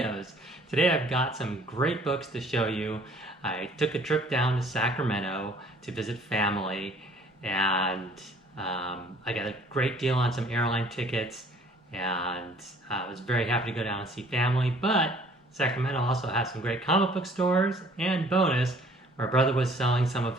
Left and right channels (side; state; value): both; normal; correlation 0.56